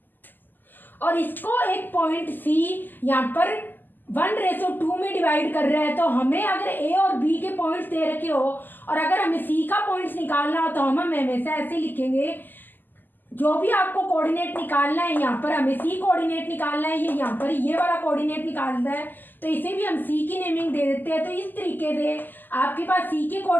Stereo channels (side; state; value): right; late; 0.089 ms